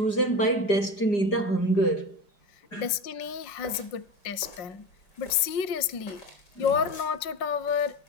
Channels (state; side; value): late; right; 5.5 ms